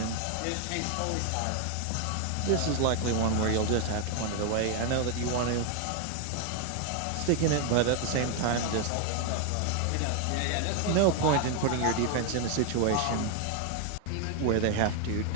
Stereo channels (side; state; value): both; different; correlation 0.01